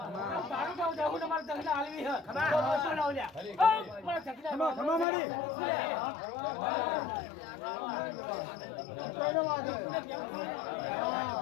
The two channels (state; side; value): drops out; right; at 5.1 s